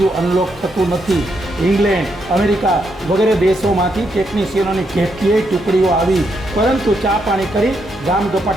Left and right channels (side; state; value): both; normal; correlation 0.79